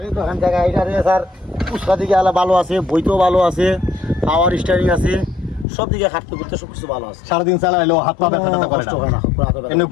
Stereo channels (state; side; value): drops out; right; at 5.7 s